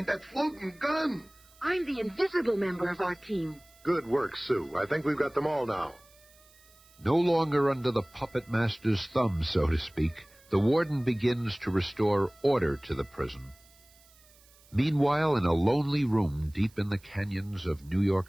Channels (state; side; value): noise; right; hiss, 28 dB below the sound